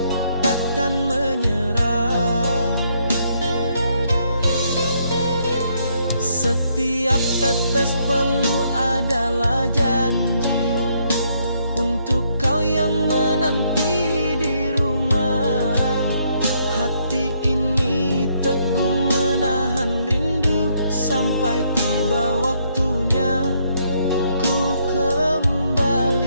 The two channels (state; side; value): inverted; both; correlation -0.72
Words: takkan menyerah. Setiap tetes peluh adalah janji untuk kau yang menanti di rumah. Hati ini teguh menahan rindu sampai tiba waktunya ku